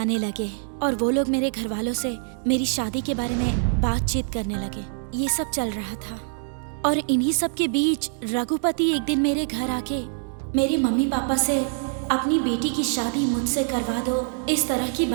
लगे और वो लोग मेरे घर वालों से मेरी शादी के बारे में बातचीत करने लगे। ये सब चल रहा था और इन्हीं सब के बीच रघुपति एक दिन मेरे घर आके मेरे मम्मी पापा से अपनी बेटी की शादी मुझसे करवा दो, इस तरह की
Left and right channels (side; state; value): left; silent; 60 dB below the other